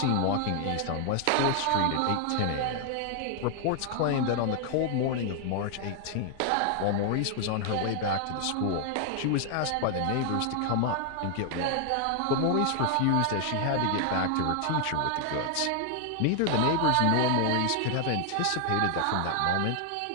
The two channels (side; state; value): both; different; correlation 0.00